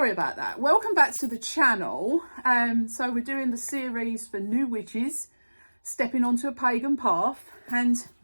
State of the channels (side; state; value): both; inverted; correlation -1.00